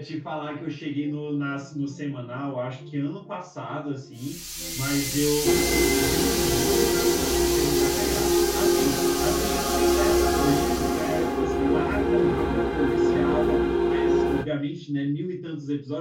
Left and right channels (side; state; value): both; identical; correlation 1.00